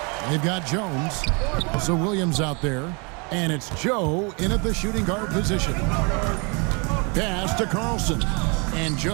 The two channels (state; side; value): quieter; left; 32.1 dB